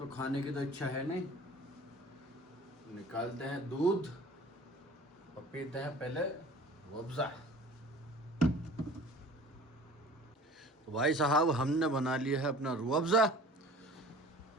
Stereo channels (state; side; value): normal; both; correlation 0.45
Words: खाने की तो इच्छा है नहीं। निकालते हैं दूध और पीते हैं पहले रूअफ़ज़ा। तो भाई साहब, हमने बना लिया है अपना रूअफ़ज़ा,